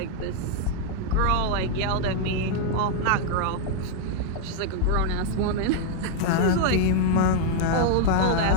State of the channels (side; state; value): both; different; correlation 0.00